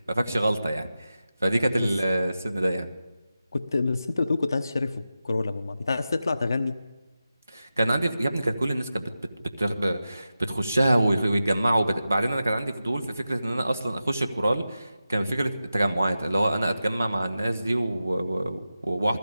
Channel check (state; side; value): inverted; both; correlation -0.92